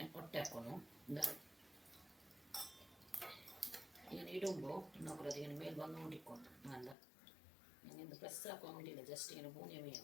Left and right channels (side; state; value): right; drops out; at 7.0 s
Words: ഒട്ടാക്കുന്നു എന്താ ഇങ്ങനെ ഇടുമ്പോൾ നോക്കൂല അതിങ്ങനെ മേൽ വന്നുകൊണ്ടിരിക്കും നല്ല நீங்கள் இந்த ப்ரெஸ் ஆக்க முடியல, ஜஸ்ட் எனக்கு பூனியமே